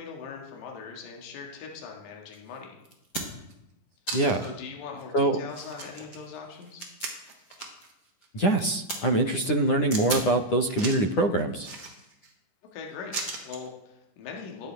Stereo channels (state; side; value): late; right; 10 ms